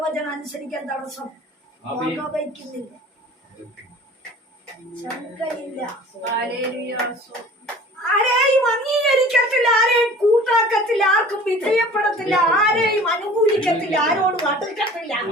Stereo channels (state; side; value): normal; both; correlation 0.45